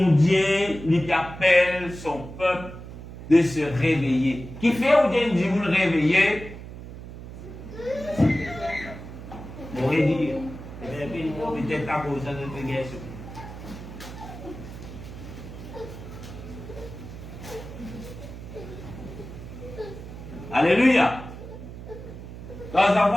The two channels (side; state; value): right; noise; hum, 12 dB below the sound